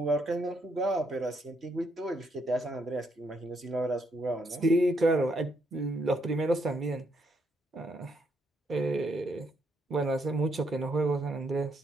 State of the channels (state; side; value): normal; both; correlation 0.74